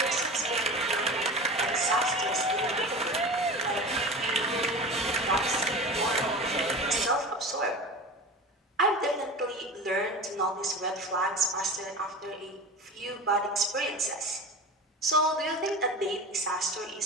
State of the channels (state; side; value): normal; both; correlation 0.32